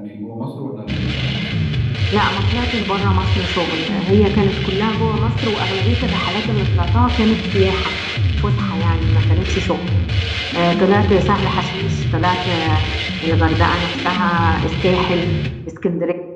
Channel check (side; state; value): both; identical; correlation 1.00